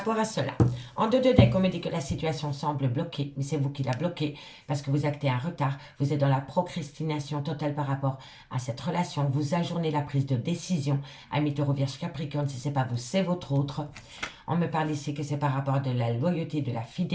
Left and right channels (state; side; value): identical; both; correlation 1.00